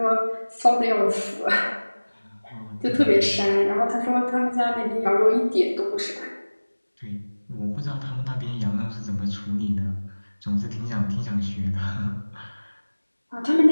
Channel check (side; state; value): both; inverted; correlation -1.00